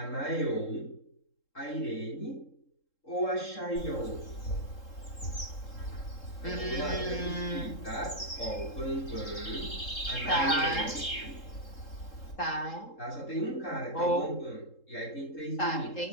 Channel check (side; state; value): right; late; 3.7 ms